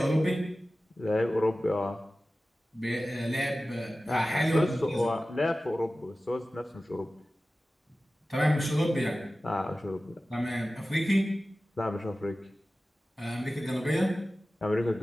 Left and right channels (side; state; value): both; normal; correlation 0.96